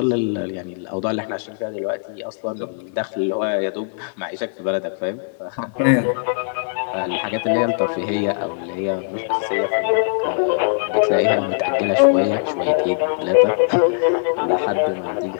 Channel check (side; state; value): right; silent; 65 dB below the other